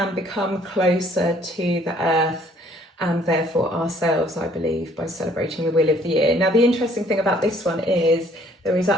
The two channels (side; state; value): both; normal; correlation 0.61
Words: closer to the earth and therefore ourselves, I believe, by celebrating the Wheel of the Year. Now, the interesting thing about this one is there is